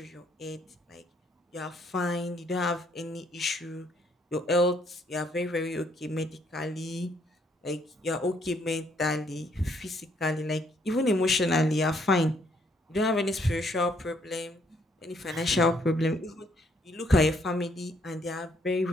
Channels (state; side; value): normal; both; correlation 0.68